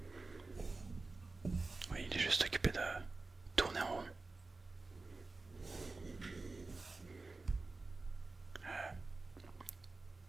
Oui, il est juste occupé de tourner en rond.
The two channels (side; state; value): left; quieter; 3.6 dB